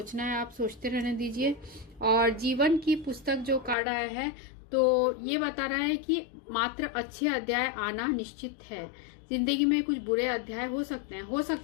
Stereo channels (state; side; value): drops out; right; at 3.8 s